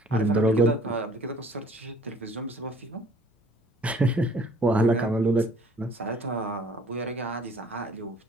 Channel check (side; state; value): both; normal; correlation 0.55